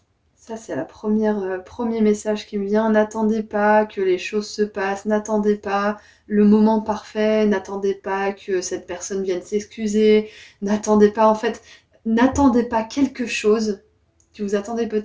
Ça, c'est la premier message qui me vient. N'attendez pas que les choses se passent, n'attendez pas le moment parfait, n'attendez pas que cette personne vienne s'excuser, n'attendez pas, en fait, n'attendez pas quelque chose que vous attendez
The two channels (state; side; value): identical; both; correlation 1.00